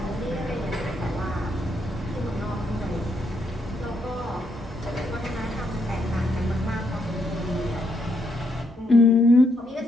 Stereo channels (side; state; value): both; normal; correlation 0.76